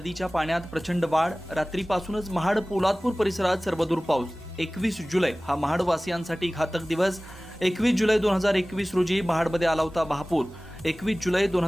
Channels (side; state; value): both; normal; correlation 0.98